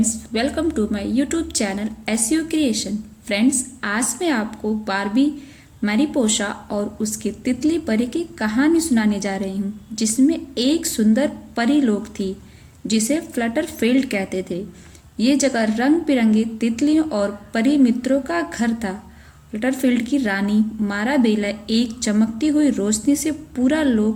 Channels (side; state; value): both; identical; correlation 1.00